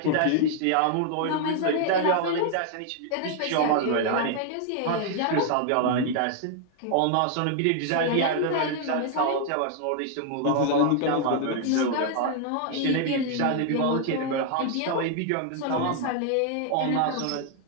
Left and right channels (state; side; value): different; both; correlation 0.00